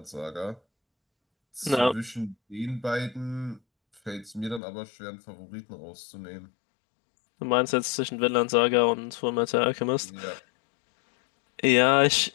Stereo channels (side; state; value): right; drops out; at 4.6 s